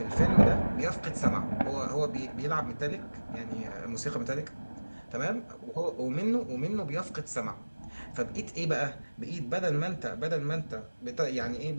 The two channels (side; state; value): both; inverted; correlation -1.00